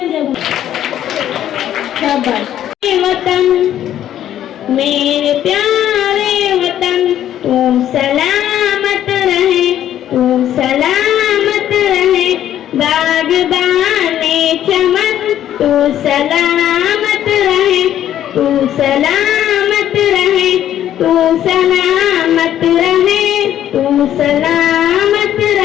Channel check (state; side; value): quieter; right; 11.3 dB